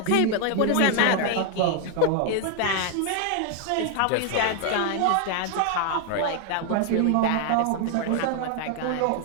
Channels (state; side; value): different; both; correlation 0.00